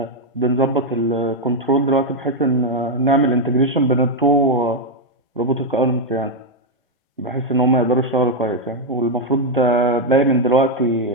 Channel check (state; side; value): normal; both; correlation 0.02